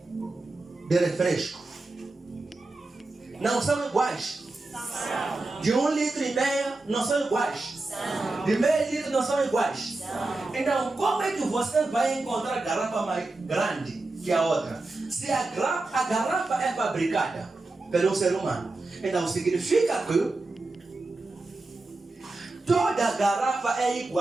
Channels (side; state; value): left; quieter; 3.2 dB